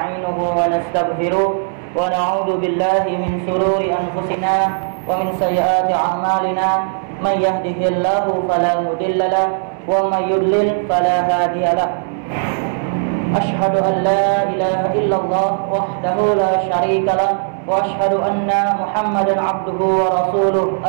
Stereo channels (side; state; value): left; silent; 68 dB below the other